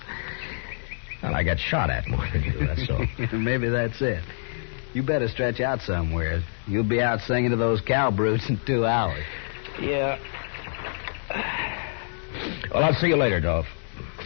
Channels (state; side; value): silent; right; digital silence